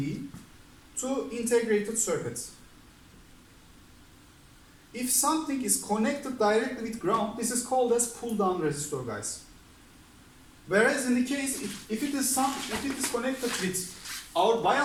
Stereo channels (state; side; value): identical; both; correlation 1.00